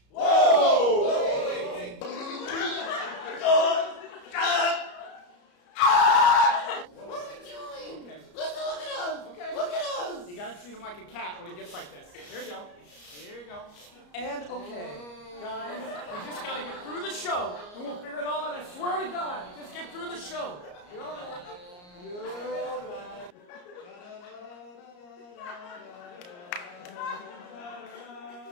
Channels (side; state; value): right; late; 34 ms